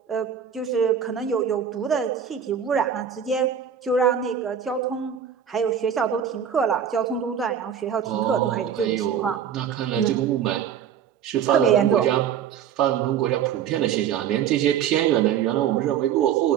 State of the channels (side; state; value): left; quieter; 8.5 dB